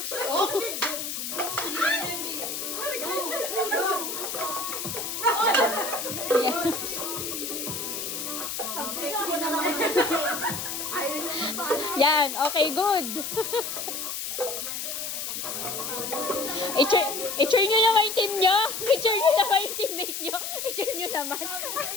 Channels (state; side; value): noise; left; hiss, 4 dB below the sound